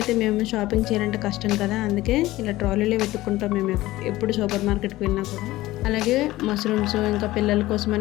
అయితే మేము షాపింగ్ చేయాలంటే కష్టం కదా, అందుకే ఇలా ట్రాలీలో వెతుక్కుంటాం మేము ఎప్పుడు సూపర్ మార్కెట్కి వెళ్ళినా కూడా. అలాగే మష్రూమ్స్, ఇంకా పిల్లల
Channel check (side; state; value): right; quieter; 17.2 dB